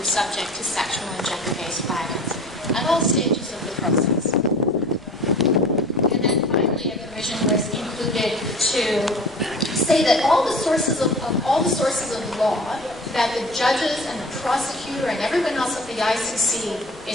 subject to sexual and gender-based violence at all stages of the process. And then finally, a provision was included to say that all the sources of law that the judges and the prosecutor and everyone else at the ICC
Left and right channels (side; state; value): left; noise; rumble, 23 dB below the sound